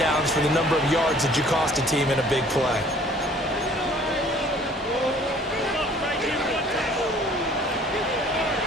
for the number of yards that you cost a team in a big play.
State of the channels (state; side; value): normal; both; correlation 0.54